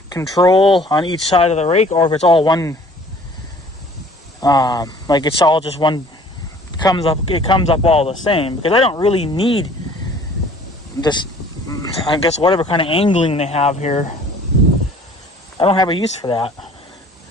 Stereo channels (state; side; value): normal; both; correlation 0.52